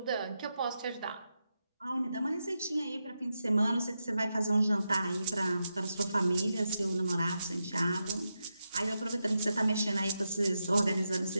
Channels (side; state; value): both; inverted; correlation -0.87